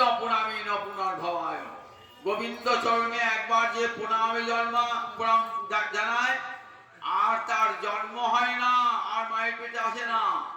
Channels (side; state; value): both; identical; correlation 1.00